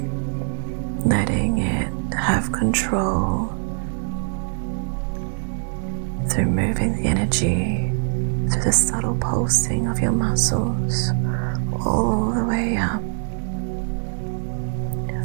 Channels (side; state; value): left; silent; digital silence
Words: letting it have control through moving the energy through the subtle pulsing of your muscles all the way up